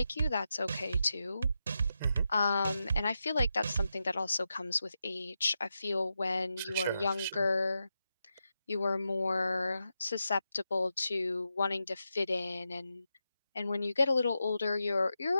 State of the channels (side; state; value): both; inverted; correlation -0.88